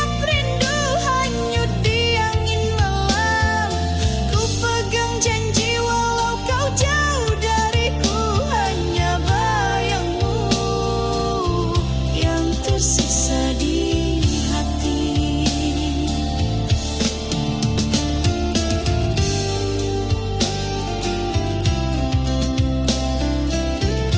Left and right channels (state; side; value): identical; both; correlation 1.00